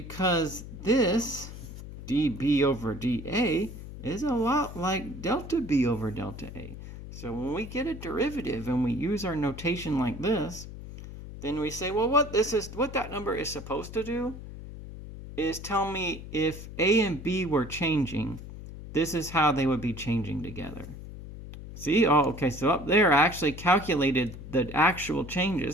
this dB over dA is a lot like delta B over delta A. So when we get a derivative and we use our notation like this, then we say, well, what that number is supposed to do is tell me if A and B were changing, this is how they would be changing together. See? Oh, okay, so up there I actually calculated the actual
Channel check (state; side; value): noise; left; hum, 12 dB below the sound